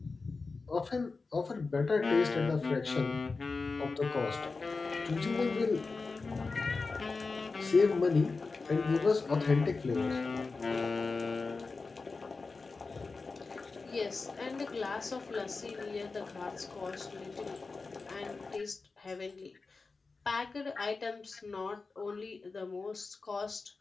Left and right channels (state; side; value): quieter; right; 4.1 dB